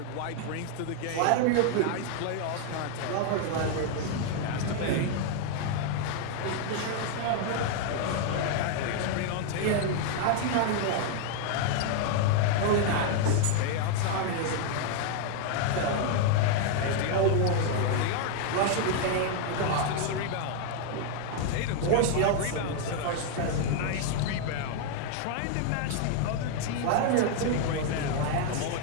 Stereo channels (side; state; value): both; different; correlation 0.00